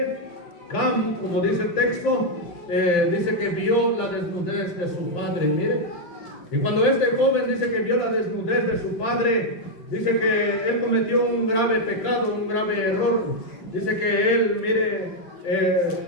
Cam, como dice el texto, dice que vio la desnudez de su padre, mire. Y cuando este joven dice que vio la desnudez de su padre, dice que él cometió un grave pecado, un grave error. Dice que él, mire,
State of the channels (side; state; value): right; late; 5.8 ms